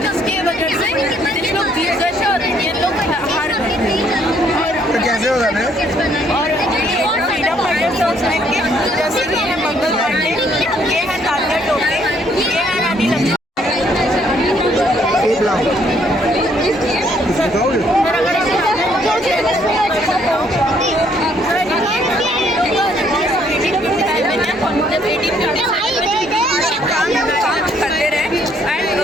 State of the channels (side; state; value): both; normal; correlation 0.67